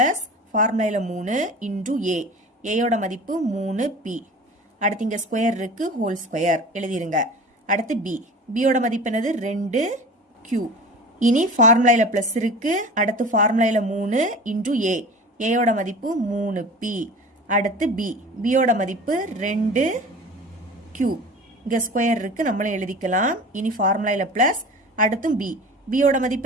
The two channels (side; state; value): both; normal; correlation 0.38